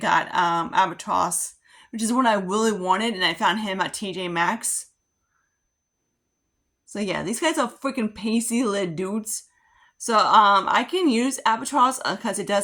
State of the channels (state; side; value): identical; both; correlation 1.00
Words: Albatross, which is one I really wanted, and I found him at TJ Maxx. So yeah, these guys are freaking pasty little dudes. So I can use Albatross because it